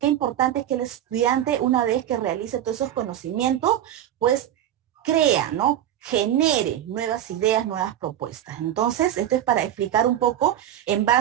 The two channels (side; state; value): left; quieter; 11.5 dB